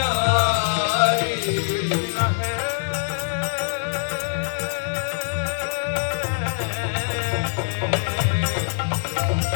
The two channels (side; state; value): right; silent; digital silence